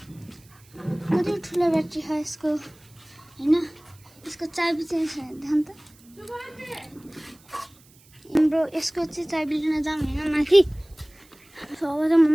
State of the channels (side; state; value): right; noise; hiss, 28 dB below the sound